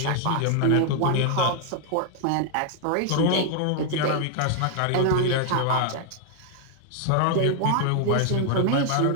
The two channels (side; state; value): both; different; correlation 0.00